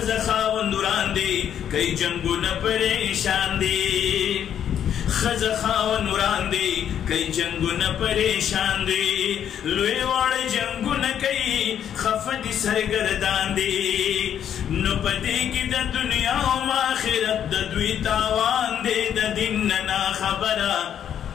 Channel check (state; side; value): quieter; right; 9.4 dB